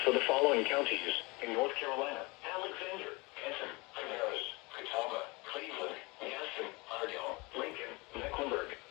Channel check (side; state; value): right; quieter; 25.7 dB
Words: for the following counties: in North Carolina, Alexander,